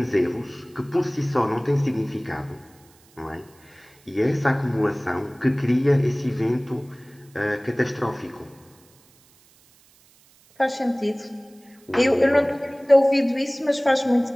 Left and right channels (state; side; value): noise; right; hiss, 30 dB below the sound